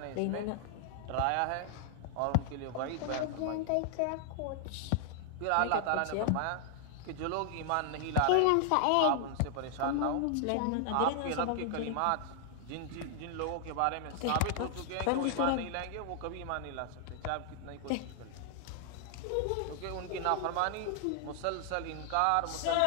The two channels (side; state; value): both; different; correlation 0.00